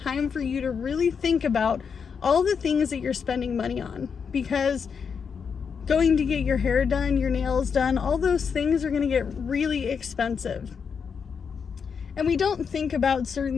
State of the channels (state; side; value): quieter; right; 6.3 dB